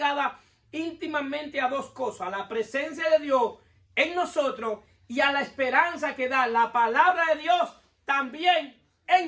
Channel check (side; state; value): both; identical; correlation 1.00